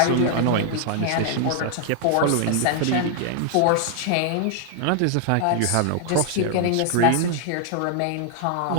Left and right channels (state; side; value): different; both; correlation -0.01